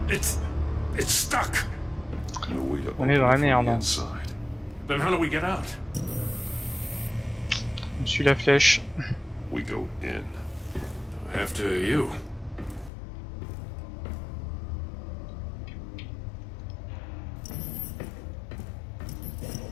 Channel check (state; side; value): drops out; right; at 12.9 s